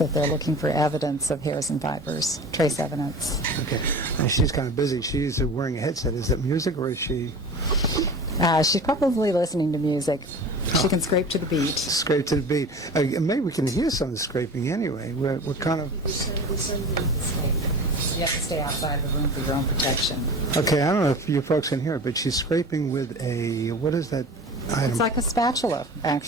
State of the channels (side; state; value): both; normal; correlation 0.36